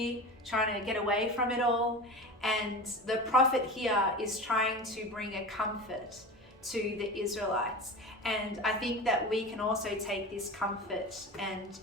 trying to get away from it all. And the prophet here is trying to bring a comfort to the Israelites. And I think that we can also take this comfort and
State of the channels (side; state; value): both; normal; correlation 0.31